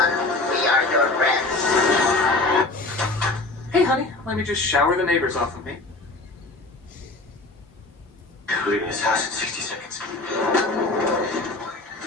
We are your friends. Hey, honey, let me just shower the neighbors off of me. Leaving his house in 60 seconds.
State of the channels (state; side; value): quieter; right; 3.1 dB